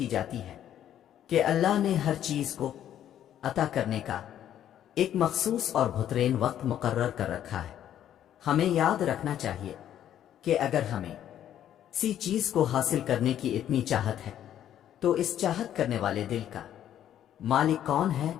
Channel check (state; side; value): quieter; right; 10.9 dB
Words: جاتی ہے کہ اللہ نے ہر چیز کو عطا کرنے کا ایک مخصوص اور بہترین وقت مقرر کر رکھا ہے۔ ہمیں یاد رکھنا چاہیے کہ اگر ہمیں کسی چیز کو حاصل کرنے کی اتنی چاہت ہے تو اس چاہت کرنے والے دل کا مالک کون ہے؟